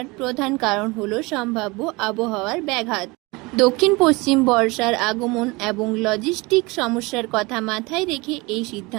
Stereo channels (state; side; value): quieter; left; 24.7 dB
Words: প্রধান কারণ হলো সম্ভাব্য আবহাওয়ার ব্যাঘাত। দক্ষিণ পশ্চিম বর্ষার আগমন এবং লজিস্টিক সমস্যার কথা মাথায় রেখে এই